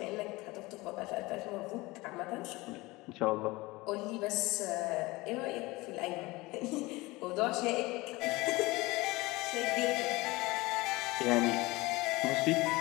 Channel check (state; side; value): quieter; right; 21.7 dB